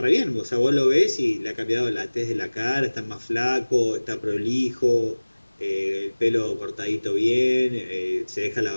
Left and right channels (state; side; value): inverted; both; correlation -1.00